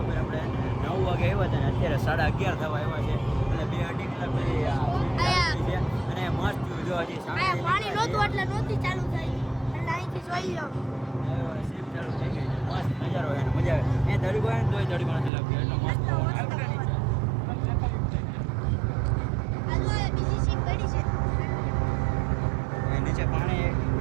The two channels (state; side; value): drops out; left; at 15.3 s